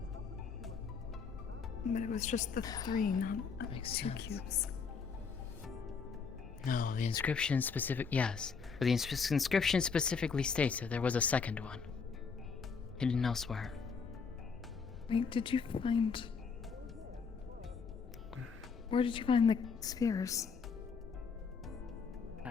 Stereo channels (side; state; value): right; quieter; 5.5 dB